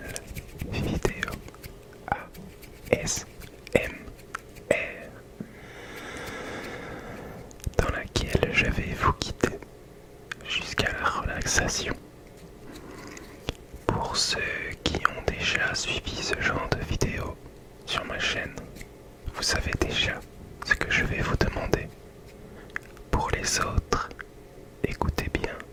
vidéo ASMR dans laquelle je vais vous guider jusqu'à la relaxation. Pour ceux qui ont déjà suivi ce genre de vidéo sur ma chaîne, vous savez déjà ce que je vais vous demander. Pour les autres, écoutez bien,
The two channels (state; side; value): identical; both; correlation 1.00